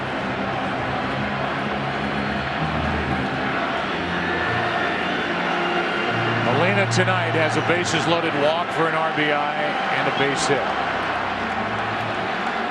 Molina tonight has a bases loaded walk for an RBI and a base hit.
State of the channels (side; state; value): both; identical; correlation 1.00